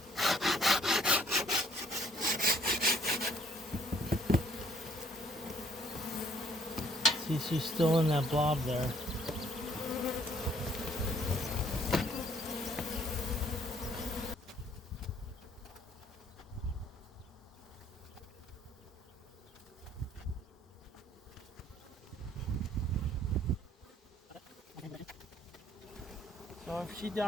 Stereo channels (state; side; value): normal; both; correlation 0.62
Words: See, she's still in that blob there. So if she